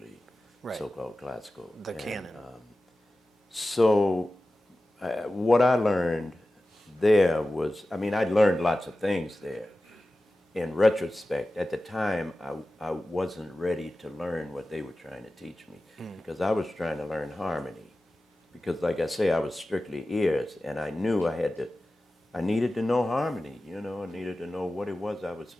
so-called classical. The canon. So what I learned there was, I learned lots of things there. In retrospect, at the time, I wasn't ready to learn what they were trying to teach me because I was trying to learn harmony. Because, like I say, I was strictly ears, and I knew I needed to know harmony. I needed to know what it was I was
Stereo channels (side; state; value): both; normal; correlation 0.95